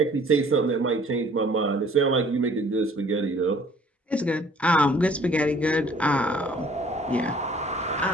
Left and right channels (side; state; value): both; normal; correlation 0.55